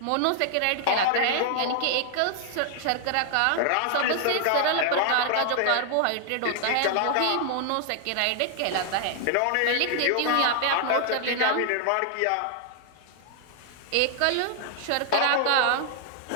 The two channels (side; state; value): both; different; correlation 0.00